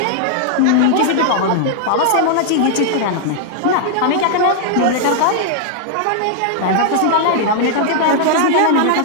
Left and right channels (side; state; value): both; different; correlation -0.01